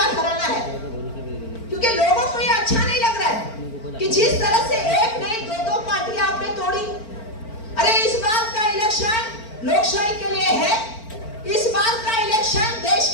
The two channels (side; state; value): right; late; 4.4 ms